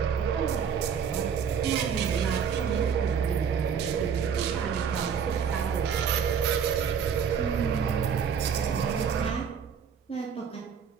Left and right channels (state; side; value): quieter; left; 7.2 dB